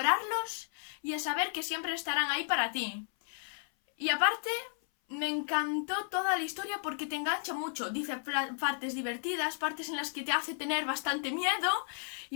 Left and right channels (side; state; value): right; silent; 55 dB below the other